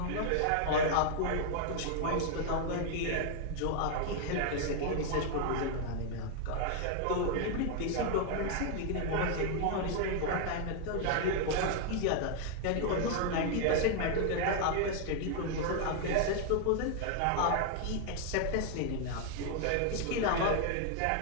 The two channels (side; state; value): both; different; correlation 0.00